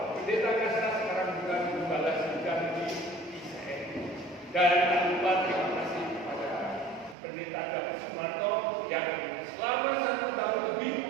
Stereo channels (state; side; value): drops out; left; at 7.2 s